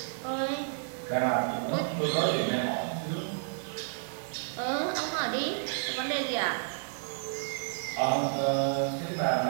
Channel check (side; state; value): left; silent; 57 dB below the other